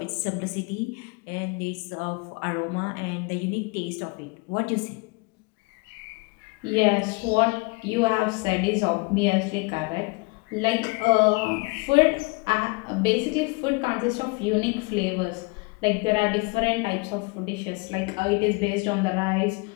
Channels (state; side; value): quieter; right; 28.6 dB